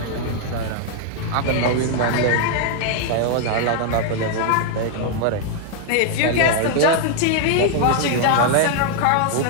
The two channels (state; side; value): different; both; correlation 0.00